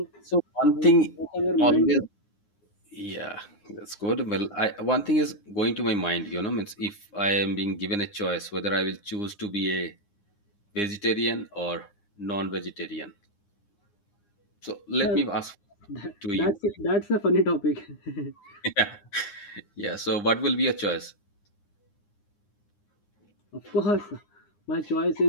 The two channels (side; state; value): right; late; 9.8 ms